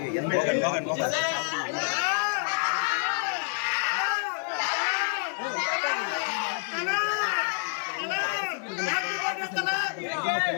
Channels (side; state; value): right; silent; 59 dB below the other